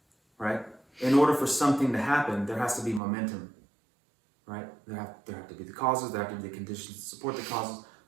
Right? In order for something to happen, there has to be momentum. Right? There have to be the causes, there have to be the conditions to support the causes.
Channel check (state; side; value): drops out; left; at 3.0 s